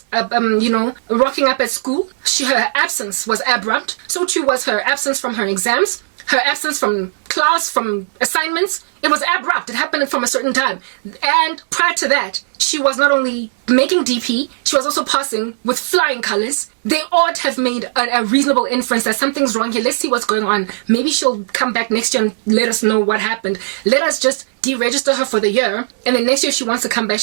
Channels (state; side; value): silent; left; digital silence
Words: rocking up at school. Her absence was abrupt. So too was her absence from her exams, her absence from class, from assignments. It was abrupt. It happened from a certain time. And prior to that, she was not only making DP, she was also passing with flying colors. They ought to have made a reasonable inference that something's wrong here. Let's see what's going on. Maybe she'll come back next year and let us know what happened. Let us just deregister her for the year, and then next year if she wants to come back,